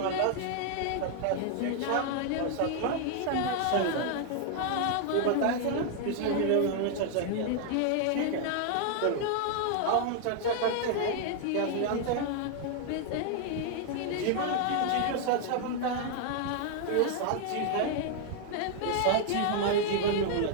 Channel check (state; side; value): different; both; correlation 0.00